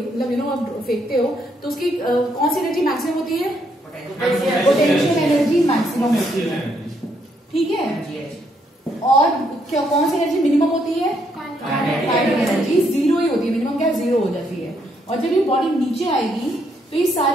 यू नो आप फेंकते हो तो उसकी कौन सी एनर्जी मैक्सिमम होती है, पोटेंशियल एनर्जी मैक्सिमम होती है, ठीक है? और क्या कौन सी एनर्जी मिनिमम होती है, काइनेटिक एनर्जी 0 ही होती है, मिनिमम क्या 0 हो जाती है। और जब ये बॉडी नीचे आएगी तो ये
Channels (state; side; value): normal; both; correlation 0.74